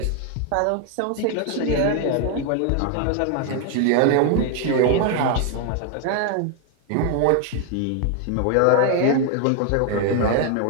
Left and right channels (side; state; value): both; different; correlation 0.00